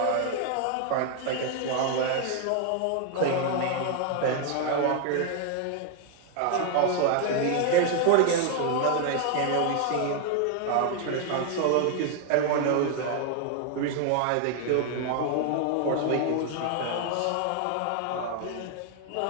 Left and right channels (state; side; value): different; both; correlation 0.00